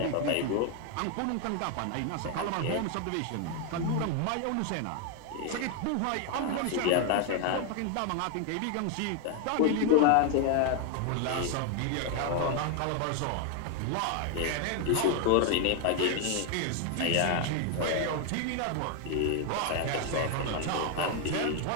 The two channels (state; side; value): different; both; correlation 0.01